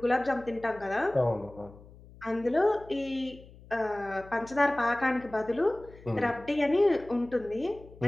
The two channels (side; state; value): left; noise; hum, 21 dB below the sound